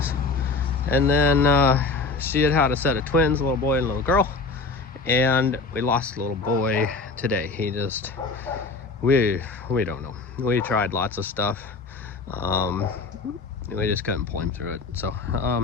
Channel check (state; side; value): quieter; right; 4.0 dB